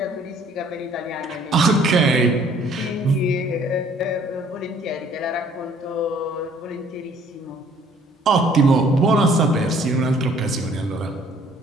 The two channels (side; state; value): both; normal; correlation 0.58